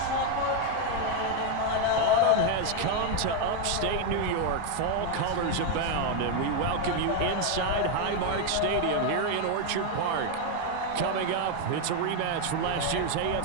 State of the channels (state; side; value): different; both; correlation 0.01